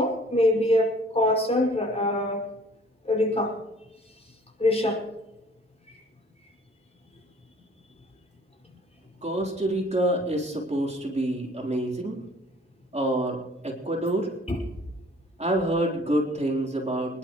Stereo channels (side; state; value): both; normal; correlation 0.54